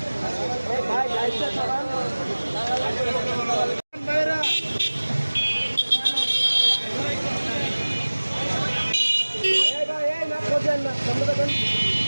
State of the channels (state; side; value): inverted; both; correlation -1.00